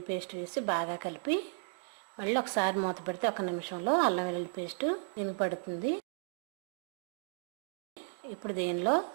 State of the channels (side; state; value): left; silent; digital silence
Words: పేస్ట్ వేసి బాగా కలిపి మళ్ళీ ఒకసారి మూత పెడితే 1 నిమిషంలో అల్లం వెల్లుల్లి పేస్ట్ దీనికి పడుతుంది. ఇప్పుడు దీనిలో